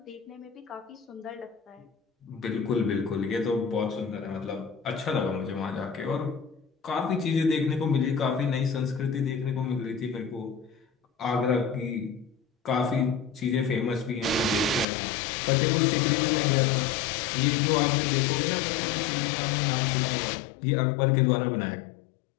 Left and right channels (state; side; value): drops out; right; at 14.9 s